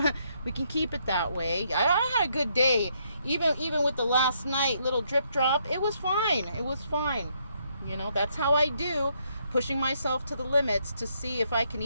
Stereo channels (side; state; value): both; inverted; correlation -0.73